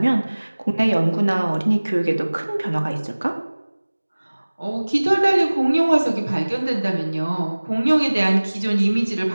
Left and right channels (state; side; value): inverted; both; correlation -1.00